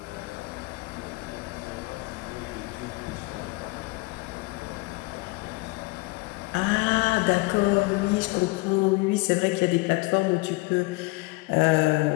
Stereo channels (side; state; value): right; quieter; 25.5 dB